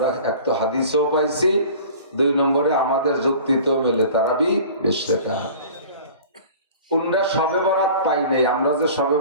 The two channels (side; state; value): both; inverted; correlation -0.43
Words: এক তো হাদিসেও পাইছি, 2 নম্বরে আমাদের যুক্তিতেও মেলে তারাবি 20 রাকাত। উনরা শবে বরাত পাই নাই, আমরা যে শবে